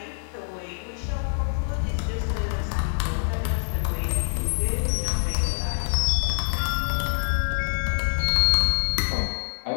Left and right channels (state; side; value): silent; right; 59 dB below the other